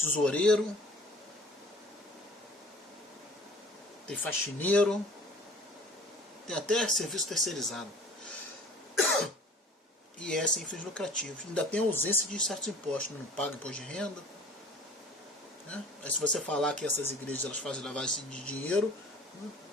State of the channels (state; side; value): normal; both; correlation 0.46